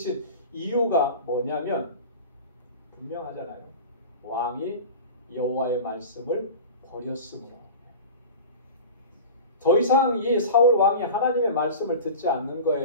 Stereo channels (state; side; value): inverted; both; correlation -0.34